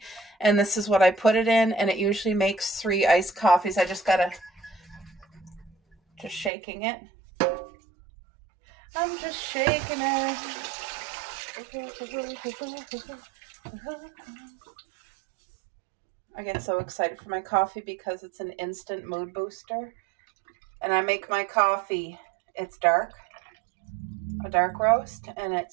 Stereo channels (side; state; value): left; drops out; at 6.5 s